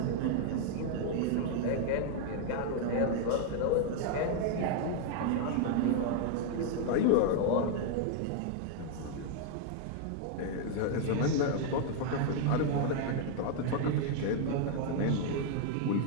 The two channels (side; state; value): both; different; correlation 0.00